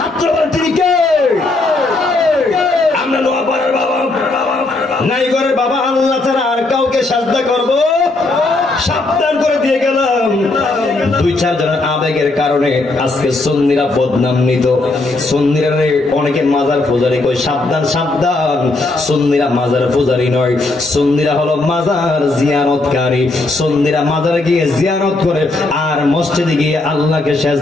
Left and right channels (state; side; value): quieter; right; 3.1 dB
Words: তিনি কে? আমরা নোয়াপাড়ার বাবা নাই করে বাবা আল্লাহ ছাড়া আর কাউকে সিজদা করবো? সাবধান করে দিয়ে গেলাম। দুই চার জনের আবেগের কারণে আজকে সুন্নিরা বদনামিত। সুন্নিরা অনেকে মাজার পূজারি কই, সাবধান সাবধান, সুন্নিরা মাজার পূজারি নয়, সুন্নিরা হলো মাজার জিয়ারতকারী। সুন্নিরা মাজারে গিয়ে জিয়ারত করে আর মসজিদে গিয়ে আল্লাহকে